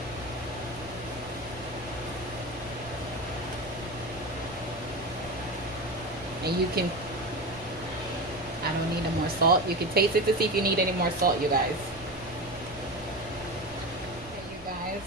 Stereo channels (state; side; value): noise; right; rumble, 19 dB below the sound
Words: And you can, I don't need any more salt. You can taste it to see if you need any more salt, you guys. Okay, you guys,